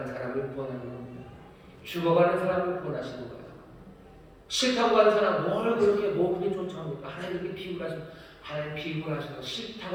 사람을 구원하는 겁니다. 죽어가는 사람을 구원하시는 거예요. 싫다고 하는 사람 뭘 그렇게 쫓아옵니까? 하나님께 비굴하시는, 하나님 비굴하셔서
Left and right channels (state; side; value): identical; both; correlation 1.00